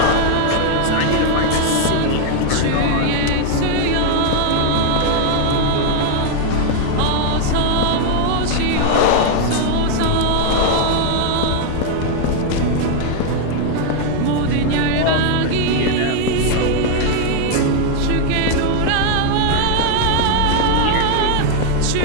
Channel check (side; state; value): both; different; correlation 0.00